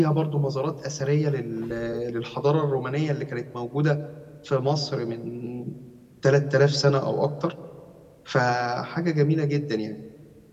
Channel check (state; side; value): identical; both; correlation 1.00